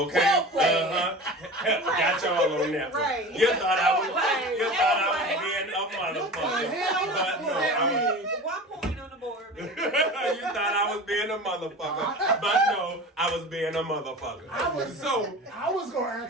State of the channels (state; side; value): normal; both; correlation 0.34